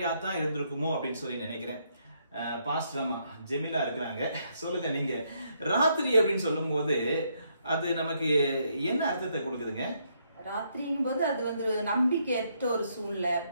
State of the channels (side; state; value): both; inverted; correlation -0.74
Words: தான் இருந்திருக்குமோ அப்படின்னு சொல்லி நினைக்கிறேன். பாஸ்டர் அம்மா ஜெமிலா இருக்கிறாங்க, சொல்லுங்க நீங்க ராத்திரி அப்படின்னு சொல்லும் போது அது நமக்கு என்ன அர்த்தத்தை கொடுக்குதுங்க? ராத்திரிங்கும் போது அது வந்து நம்பிக்கையற்ற ஒரு சூழ்நிலை,